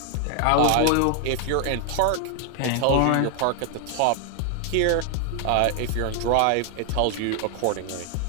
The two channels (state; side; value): different; both; correlation 0.00